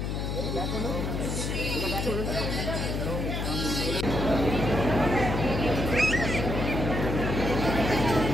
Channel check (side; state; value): left; noise; hum, 2 dB below the sound